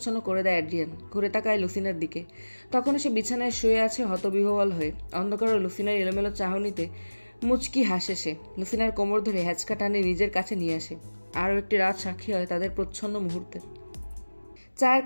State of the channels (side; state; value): both; inverted; correlation -1.00